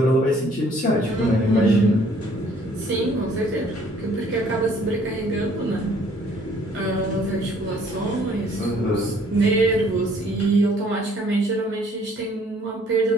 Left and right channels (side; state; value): both; normal; correlation 0.60